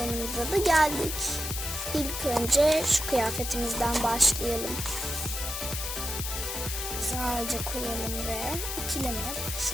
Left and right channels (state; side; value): noise; left; hiss, 4 dB below the sound